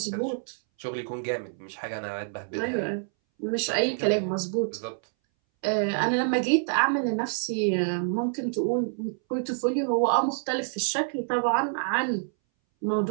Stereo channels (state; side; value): silent; left; 60 dB below the other